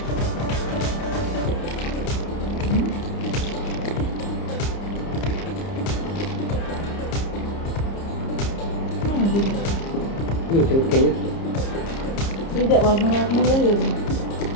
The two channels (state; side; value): late; right; 30 ms